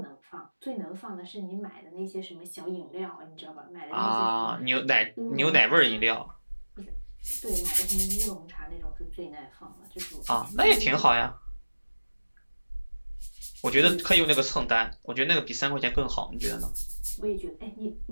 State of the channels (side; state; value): both; inverted; correlation -1.00